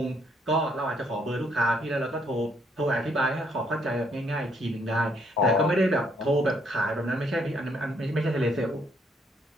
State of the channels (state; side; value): normal; both; correlation 0.69